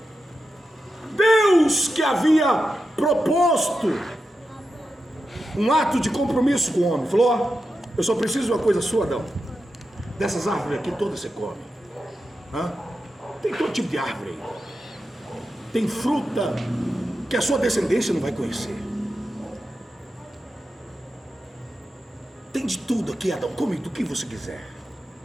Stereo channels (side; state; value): both; normal; correlation 0.89